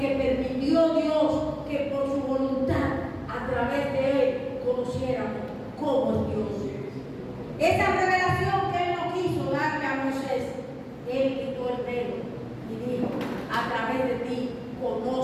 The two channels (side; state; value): both; identical; correlation 1.00